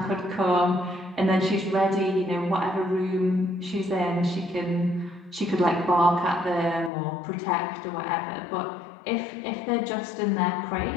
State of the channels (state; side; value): drops out; right; at 6.9 s